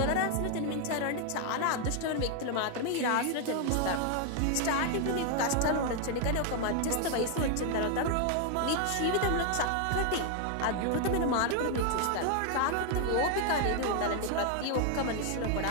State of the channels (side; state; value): both; different; correlation 0.00